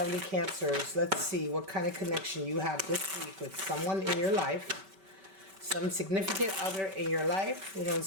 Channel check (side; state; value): left; late; 5.2 ms